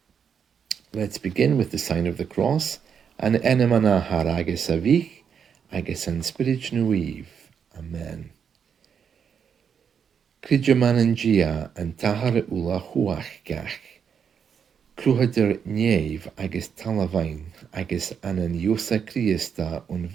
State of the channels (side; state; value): left; quieter; 7.2 dB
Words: let's begin with the sign of the cross, and n-Athair agus a bhíoch agus an Spiorad Naomh. Amen. Cridgeman an n-Athair uile-chumhachdach, luchd-ar nèamh agus talamh agus an iosa Christa